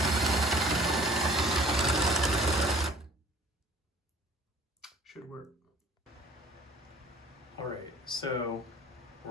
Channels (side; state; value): both; normal; correlation 0.48